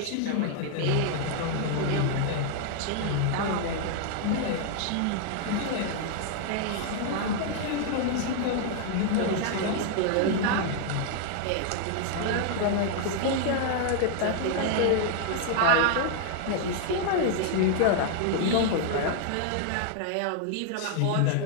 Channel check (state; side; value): different; both; correlation 0.00